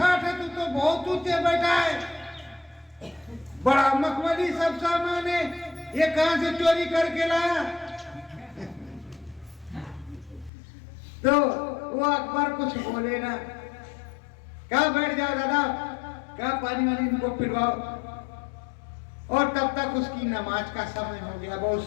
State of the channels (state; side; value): drops out; right; at 10.5 s